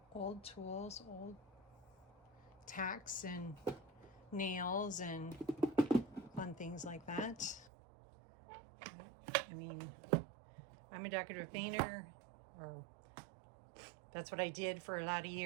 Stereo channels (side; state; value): left; drops out; at 7.7 s